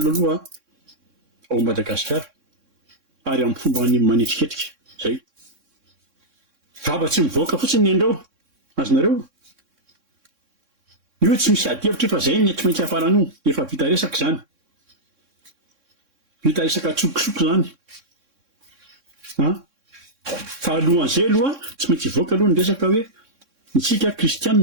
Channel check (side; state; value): left; late; 3.6 ms